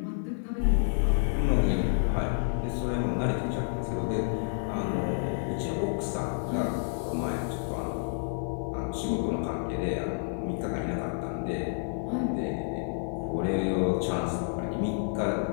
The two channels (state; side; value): silent; right; 58 dB below the other